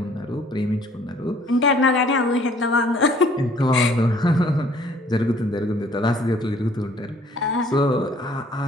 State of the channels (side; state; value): both; normal; correlation 0.58